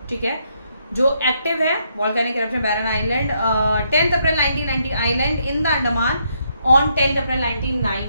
ठीक है, जो एक्टिव है volcanic eruption Barren Island. 10 April 1990 island in the Andaman on 10 April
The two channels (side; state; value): both; inverted; correlation -0.75